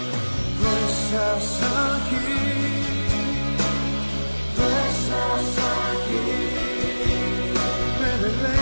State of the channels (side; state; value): both; inverted; correlation -1.00